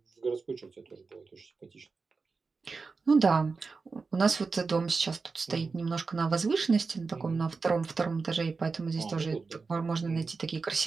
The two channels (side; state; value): left; quieter; 4.4 dB